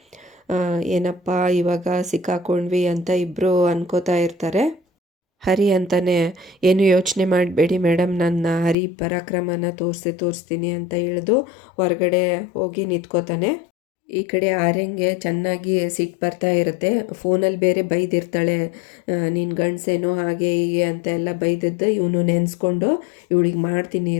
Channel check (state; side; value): drops out; right; at 8.8 s